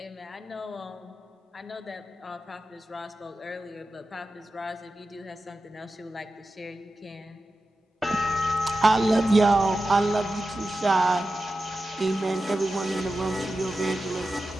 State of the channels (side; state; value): both; normal; correlation 0.92